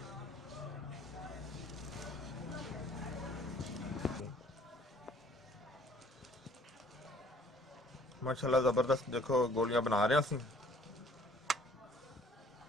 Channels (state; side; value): normal; both; correlation 0.57